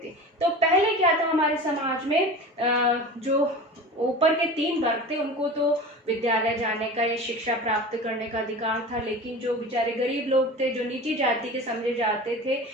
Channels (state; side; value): normal; both; correlation 0.34